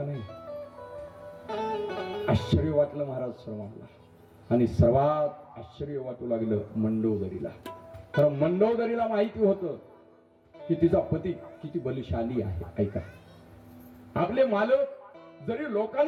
नाही, आश्चर्य वाटलं महाराज सर्वांना. आणि सर्वात आश्चर्य वाटू लागलं मंडोदरीला. कारण मंडोदरीला माहिती होतं की तिचा पती किती बलशाली आहे. ऐका, आपले मालक जरी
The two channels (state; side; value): identical; both; correlation 1.00